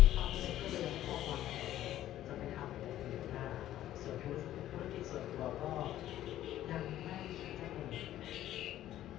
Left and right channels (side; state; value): right; quieter; 13.0 dB